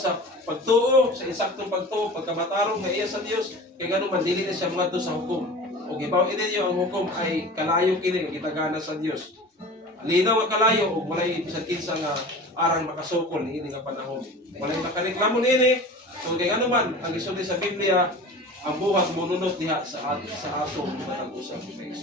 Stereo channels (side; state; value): both; normal; correlation 0.37